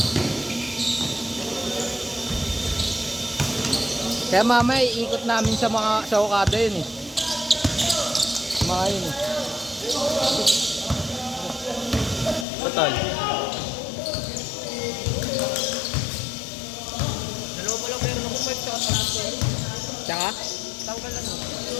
Kaya mamaya iikot namin sa Okada yun eh. Mga yun eh. Total. Dalawa pa lang meron ako 5 tsaka tanggal ko. Tsaka? Tanggal ano?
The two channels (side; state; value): right; drops out; at 12.5 s